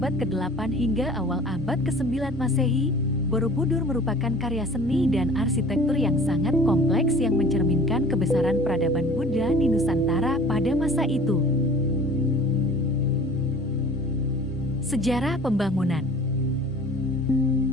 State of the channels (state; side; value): normal; both; correlation 0.45